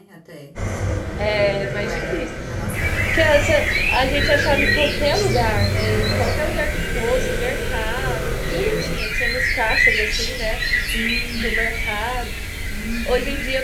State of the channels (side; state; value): both; identical; correlation 1.00